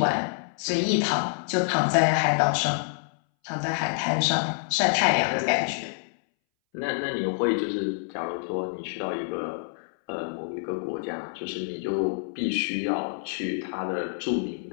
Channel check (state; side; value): silent; right; 60 dB below the other